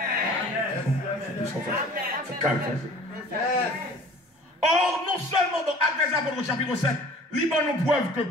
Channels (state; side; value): normal; both; correlation 0.47